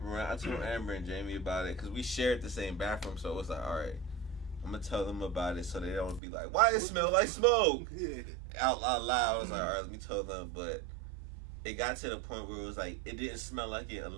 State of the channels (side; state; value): left; drops out; at 6.2 s